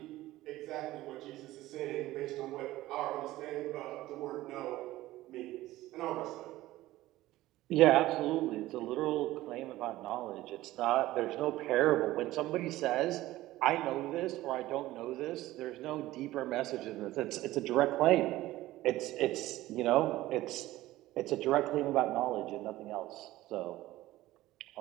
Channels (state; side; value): quieter; left; 16.5 dB